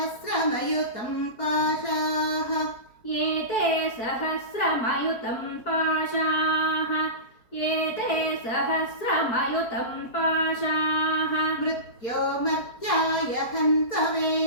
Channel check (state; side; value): late; right; 4.5 ms